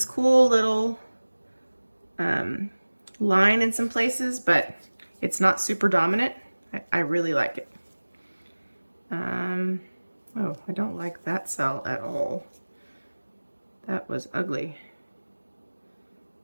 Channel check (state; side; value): inverted; both; correlation -1.00